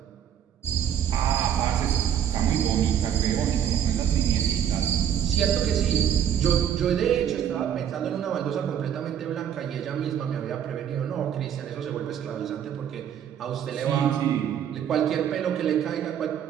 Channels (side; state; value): left; quieter; 9.3 dB